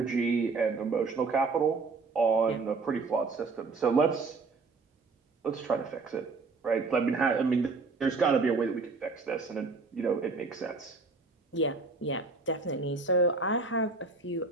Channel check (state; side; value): quieter; left; 4.1 dB